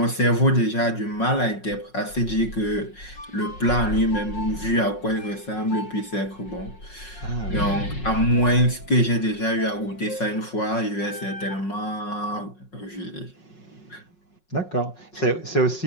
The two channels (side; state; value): right; late; 5.5 ms